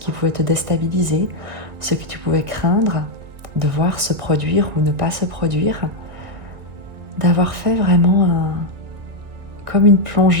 pouvait te déstabiliser, ce que tu pouvais craindre de voir se produire ou ne pas se produire, d'avoir fait vraiment comme une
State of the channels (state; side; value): late; left; 2.0 ms